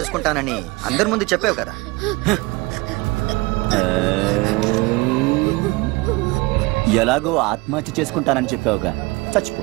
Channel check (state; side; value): quieter; left; 23.3 dB